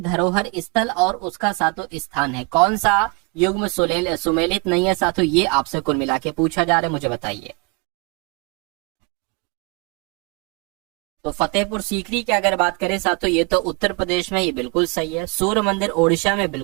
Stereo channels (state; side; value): quieter; left; 30.1 dB